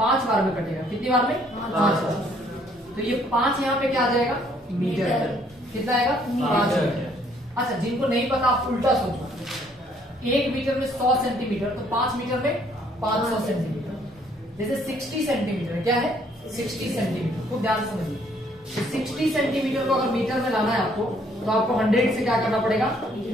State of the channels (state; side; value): normal; both; correlation 0.64